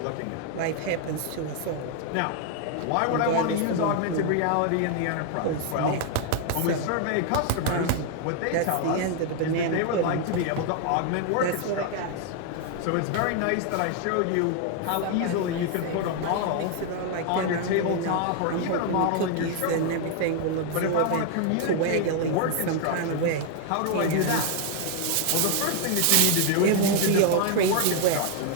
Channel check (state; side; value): different; both; correlation 0.00